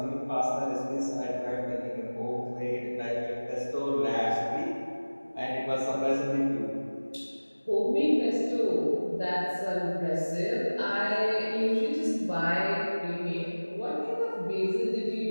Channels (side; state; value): both; inverted; correlation -1.00